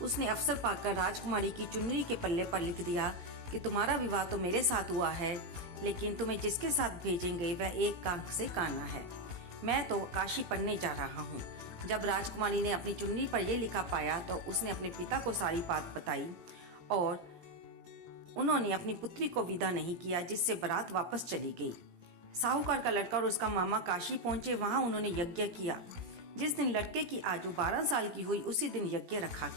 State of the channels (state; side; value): late; left; 18 ms